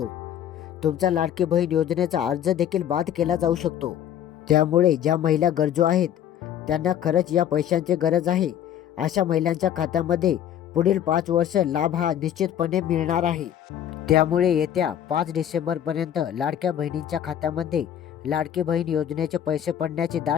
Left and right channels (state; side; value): quieter; right; 10.1 dB